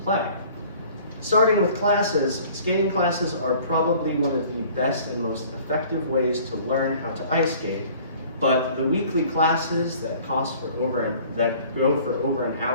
play. Starting with classes, skating classes are probably one of the best and most effective ways to learn how to ice skate. But the weekly classes that go for over an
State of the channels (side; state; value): both; inverted; correlation -0.51